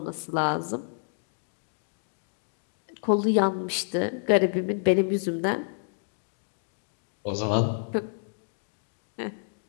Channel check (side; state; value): right; silent; digital silence